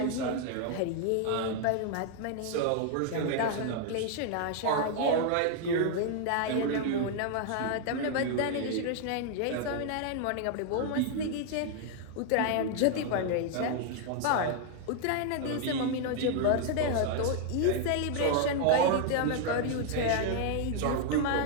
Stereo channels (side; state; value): both; different; correlation 0.00